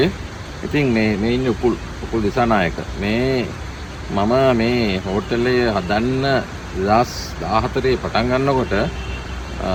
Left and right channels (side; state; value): both; identical; correlation 1.00